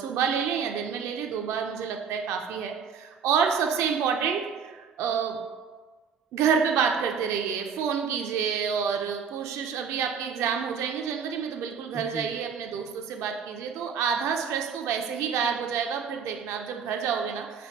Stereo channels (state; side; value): quieter; left; 6.6 dB